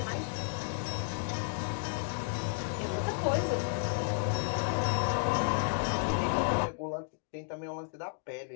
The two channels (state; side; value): silent; right; digital silence